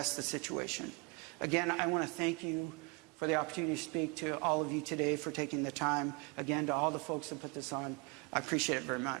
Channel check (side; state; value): left; quieter; 30.8 dB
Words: the situation. Again, I want to thank you for the opportunity to speak to all of you today, for taking the time. Again, to all the folks that put this on, I appreciate it very